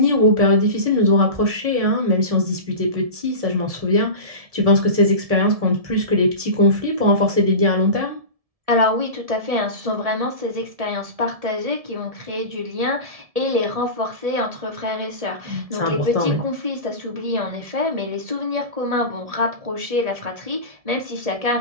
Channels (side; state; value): left; late; 1.7 ms